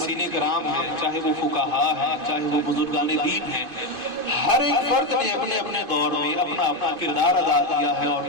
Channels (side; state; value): left; late; 2.5 ms